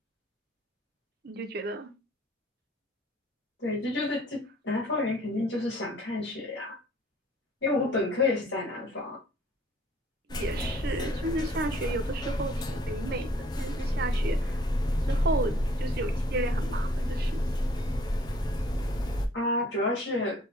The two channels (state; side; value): normal; both; correlation 0.58